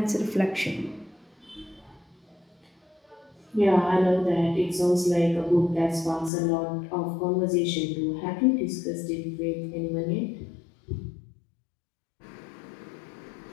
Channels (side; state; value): right; drops out; at 6.3 s